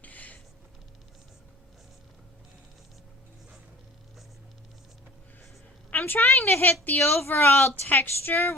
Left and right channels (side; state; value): both; normal; correlation 0.45